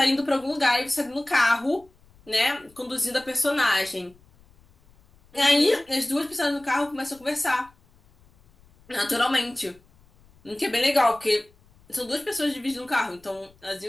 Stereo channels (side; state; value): left; noise; rumble, 30 dB below the sound